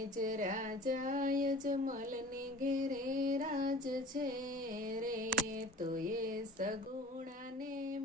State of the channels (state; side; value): normal; both; correlation 0.43